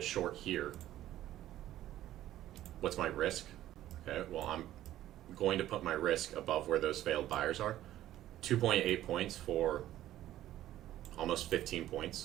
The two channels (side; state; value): left; quieter; 13.4 dB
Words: short here, what's my risk? Okay, well, I'm going to put my risk above where those failed buyers are. 2.8 points for almost 15